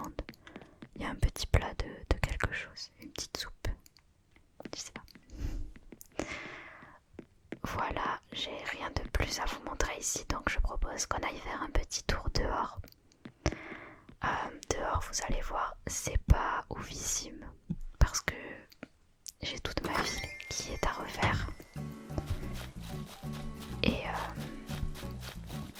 Il y a un petit plat de quelque chose, une petite soupe. Je sais pas. Voilà, j'ai rien de plus à vous montrer ici, donc je propose qu'on aille faire un petit tour dehors. Dehors, vous allez voir, c'est pas oufissime parce que j'ai toute ma ville qui est à refaire. Et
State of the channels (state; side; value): identical; both; correlation 1.00